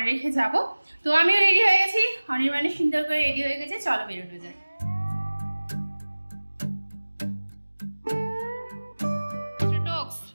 রেখে যাবো। তো আমিও রেডি হয়ে গেছি, অনির্বাণের সুন্দর করে রেডি হয়ে গেছে, চলো বেরোনো যায়।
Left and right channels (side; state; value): both; inverted; correlation -1.00